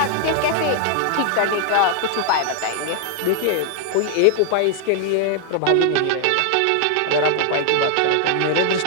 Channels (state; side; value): different; both; correlation 0.00